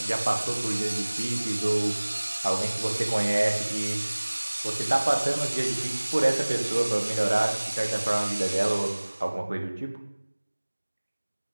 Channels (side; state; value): both; inverted; correlation -1.00